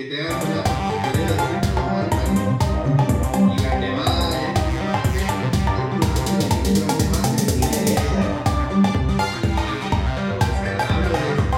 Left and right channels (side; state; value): both; identical; correlation 1.00